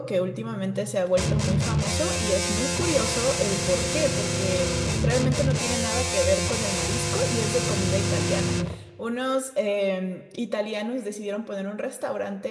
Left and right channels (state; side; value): identical; both; correlation 1.00